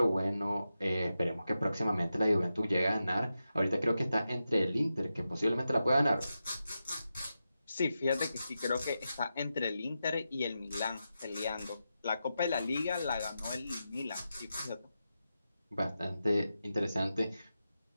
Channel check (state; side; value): inverted; both; correlation -0.89